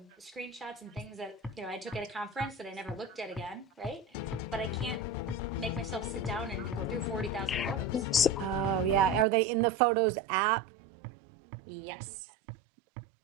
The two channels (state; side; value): drops out; left; at 9.2 s